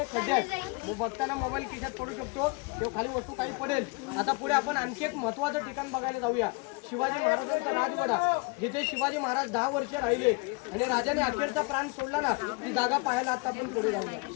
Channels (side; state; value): right; quieter; 29.3 dB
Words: खड्डे आहेत. मग बघताना मोबाईल खिशात पडू शकतो किंवा खाली वस्तू काही पडेल. आता पुढे आपण आणखी एक महत्वाचं ठिकाण बघायला जाऊया, शिवाजी महाराजांचा राजवाडा, जिथे शिवाजी महाराज 10 वर्ष राहिले आणि राजाने अखेरचा प्राण सोडला ना, ती जागा पाहायला आता आपण पुढे